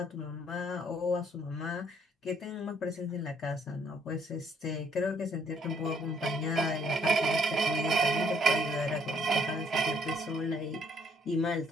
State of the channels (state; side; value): normal; both; correlation 0.65